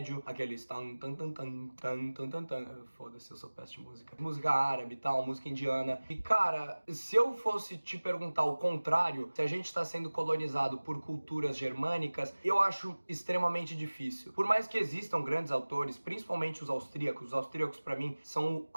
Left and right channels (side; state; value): both; inverted; correlation -1.00